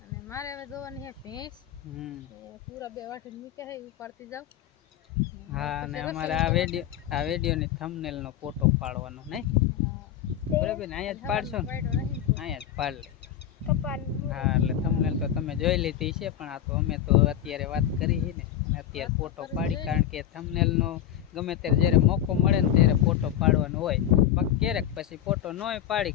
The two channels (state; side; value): quieter; right; 10.9 dB